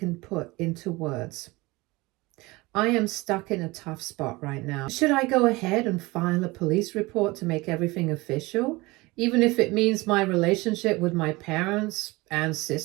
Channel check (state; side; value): quieter; left; 22.4 dB